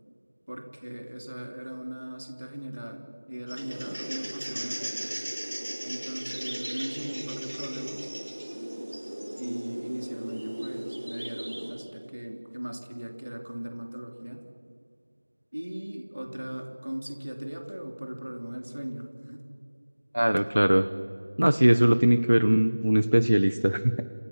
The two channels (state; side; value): inverted; both; correlation -1.00